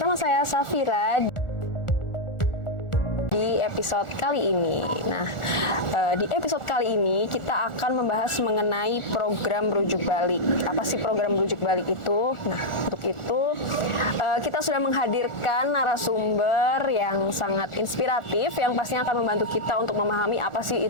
saya Safira di episode kali ini. Nah, di episode kali ini kita akan membahas mengenai program rujuk balik. Apa sih program rujuk balik itu? Nah, untuk itu kita sudah menghadirkan narasumber yang sangat inspiratif yang pastinya akan membantu kita untuk memahami apa sih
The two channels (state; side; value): late; right; 1.4 ms